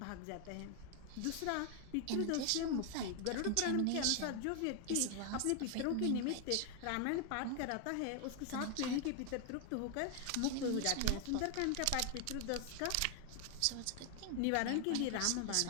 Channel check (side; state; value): both; different; correlation 0.00